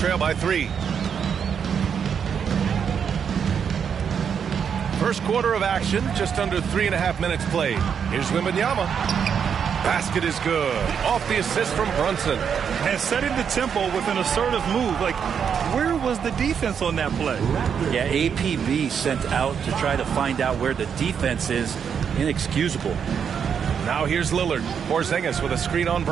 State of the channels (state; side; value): quieter; left; 7.4 dB